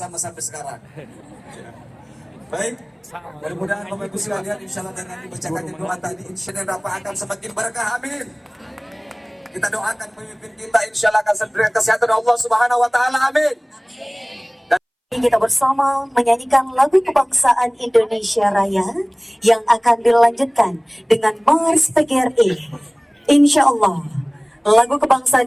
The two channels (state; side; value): identical; both; correlation 1.00